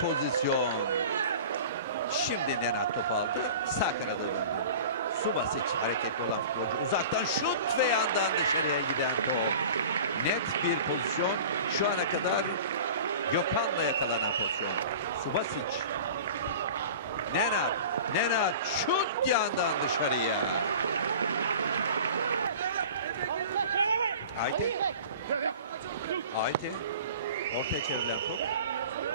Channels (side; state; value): both; inverted; correlation -0.40